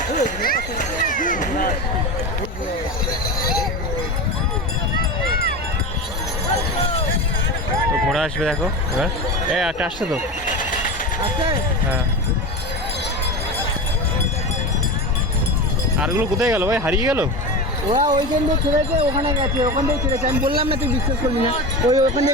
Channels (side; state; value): both; normal; correlation 0.25